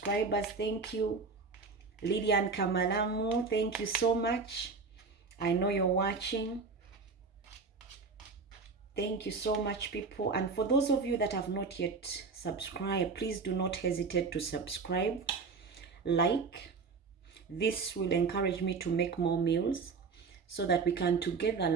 thank you. Lydian Kamalamu, thank you so much. I know you're watching. Thank you so much, people. And for those of you that have not yet subscribed, please do not hesitate to subscribe, like. This will encourage me to make more meals so that we can together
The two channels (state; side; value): quieter; left; 4.7 dB